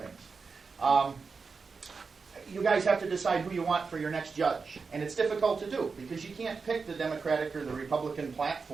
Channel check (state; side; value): quieter; left; 4.9 dB